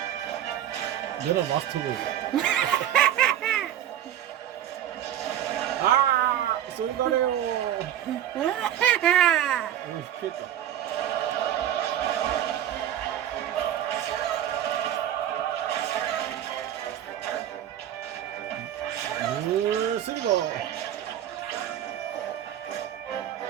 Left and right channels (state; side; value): quieter; left; 11.1 dB